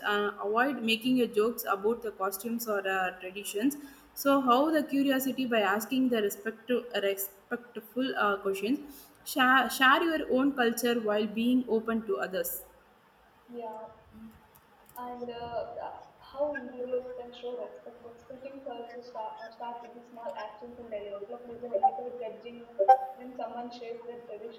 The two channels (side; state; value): both; identical; correlation 1.00